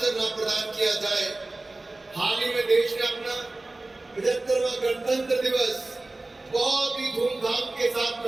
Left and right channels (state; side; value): quieter; left; 3.0 dB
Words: न प्रदान किया जाए। हाल ही में देश ने अपना 75वां गणतंत्र दिवस बहुत ही धूमधाम के साथ